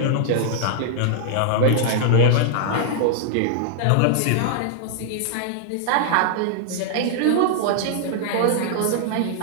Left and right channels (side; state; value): both; different; correlation -0.01